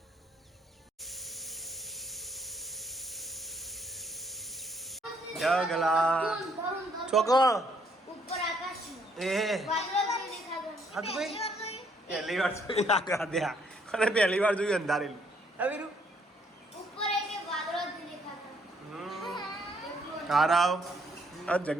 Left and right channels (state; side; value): normal; both; correlation 0.68